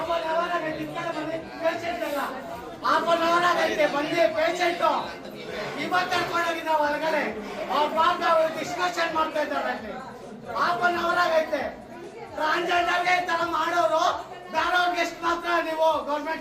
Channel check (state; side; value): identical; both; correlation 1.00